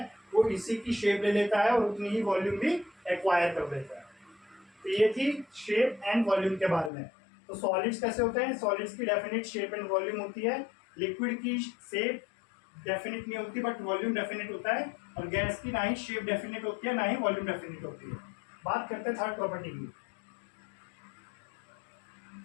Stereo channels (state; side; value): drops out; right; at 6.9 s